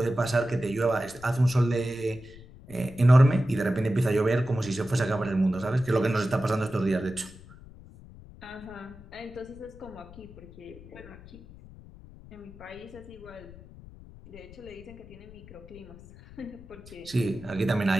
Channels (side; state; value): left; noise; rumble, 19 dB below the sound